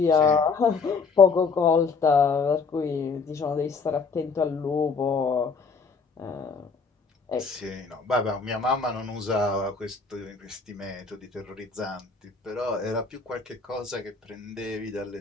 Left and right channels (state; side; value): quieter; right; 4.8 dB